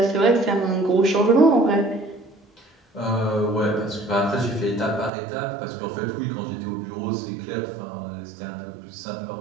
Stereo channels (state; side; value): drops out; left; at 5.1 s